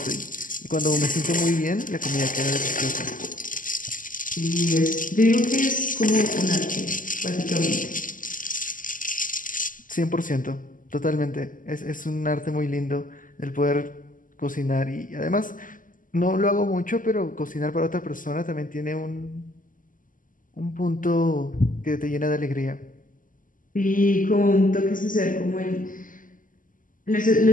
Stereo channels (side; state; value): right; late; 0.39 ms